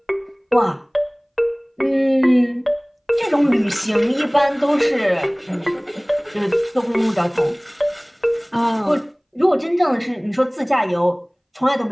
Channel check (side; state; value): both; identical; correlation 1.00